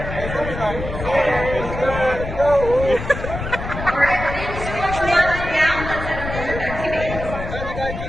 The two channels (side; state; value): left; noise; rumble, 7 dB below the sound